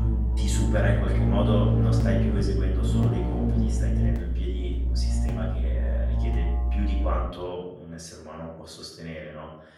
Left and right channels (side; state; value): both; identical; correlation 1.00